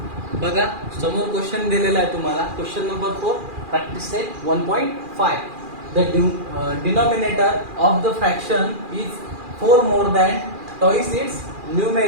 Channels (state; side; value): late; left; 2.4 ms